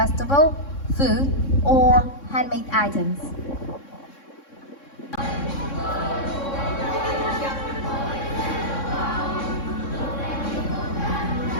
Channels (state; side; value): late; right; 3.6 ms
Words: food, or handmade items.